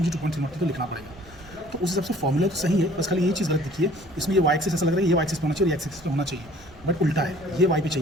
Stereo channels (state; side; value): noise; right; rumble, 22 dB below the sound